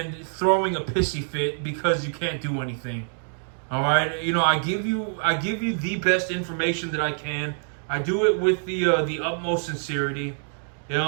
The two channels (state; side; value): silent; left; digital silence